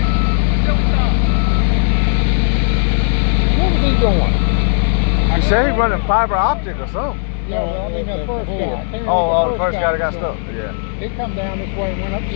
What was he doing? He said he running fiber optic or something. Yeah, well, I mean that first guy. Oh, the first guy that got stuck. Yeah. He come down this way and went up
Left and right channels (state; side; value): silent; right; 68 dB below the other